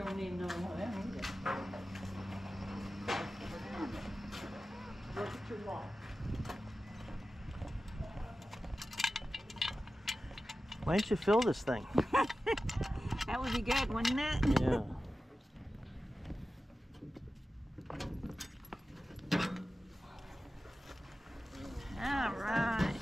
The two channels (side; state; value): both; normal; correlation 0.94